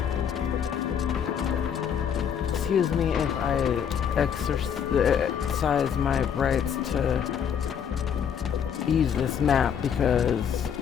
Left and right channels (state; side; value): quieter; right; 8.0 dB